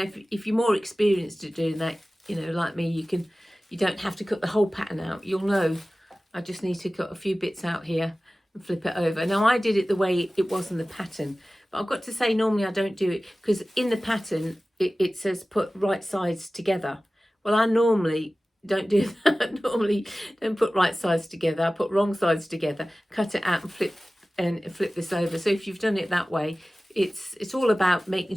if you're more experienced at doing that, you know, like me, you don't have to cut the whole pattern out. You'll know I just need to cut a few bits out here and flip it over. Now I did it the way it was in the pattern, but I've got to say, normally I don't do it, because in the pattern it says put right sides together. Well, I normally don't do that. Normally don't put right sides together. I put wrong sides together, cut it out and flip this over. So if you've done it that way, it's all about making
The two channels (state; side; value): normal; both; correlation 0.97